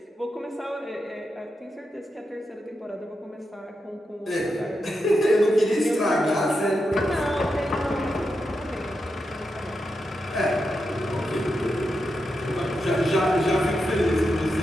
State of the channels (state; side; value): normal; both; correlation 0.87